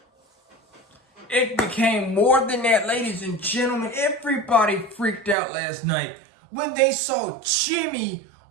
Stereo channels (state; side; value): drops out; left; at 5.4 s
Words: It became more than that, ladies and gentlemen. Everybody freaked out last night when they saw Jimmy